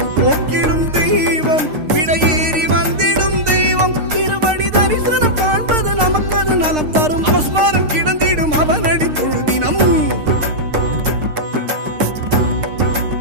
போக்கிடும் தெய்வம் விடையேறி வந்திடும் தெய்வம் திருவடி தரிசனம் காண்பது நமக்கது நலம் தரும் அவஸ்மாரம் கிடந்திடும் அவனடி தொழுதினம்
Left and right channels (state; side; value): late; left; 6.5 ms